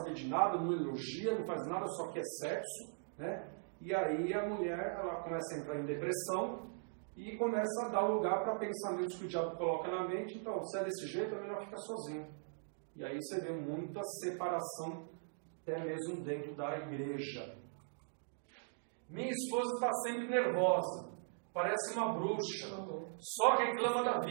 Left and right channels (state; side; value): silent; left; digital silence